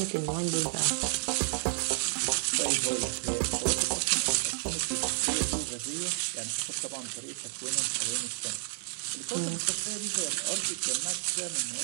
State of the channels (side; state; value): left; silent; digital silence